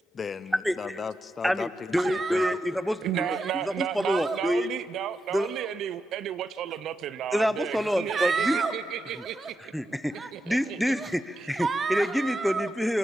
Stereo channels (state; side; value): normal; both; correlation 0.87